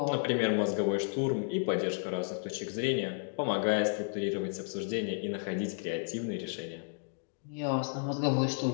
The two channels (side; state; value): right; silent; digital silence